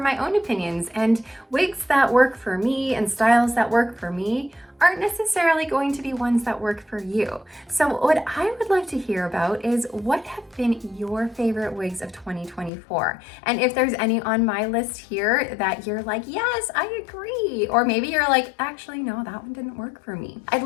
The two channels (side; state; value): right; drops out; at 12.7 s